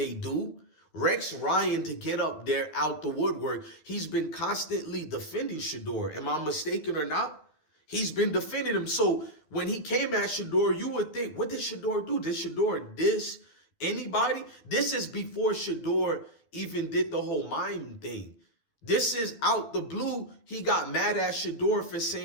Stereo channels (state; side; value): late; right; 13 ms